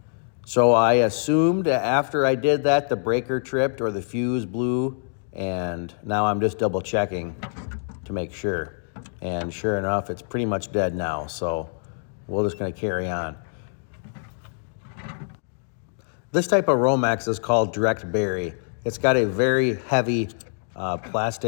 So I assumed that after I did that, the breaker tripped or the fuse blew, and now I'm just double checking to make sure. And sure enough, it's pretty much dead now, so we're just gonna carry on. This type of Romex is called direct bury. It's got a very heavy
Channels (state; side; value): silent; right; 62 dB below the other